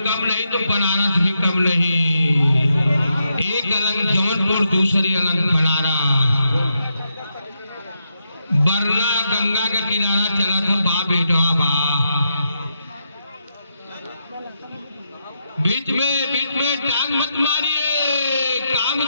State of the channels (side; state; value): both; inverted; correlation -0.82